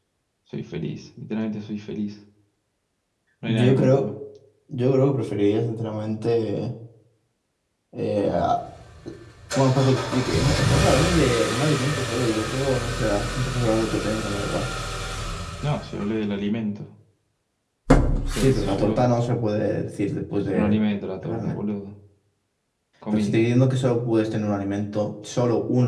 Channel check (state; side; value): identical; both; correlation 1.00